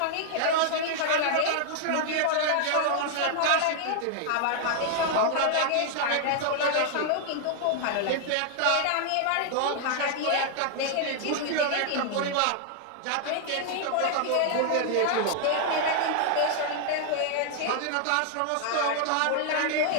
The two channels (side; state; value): both; different; correlation 0.00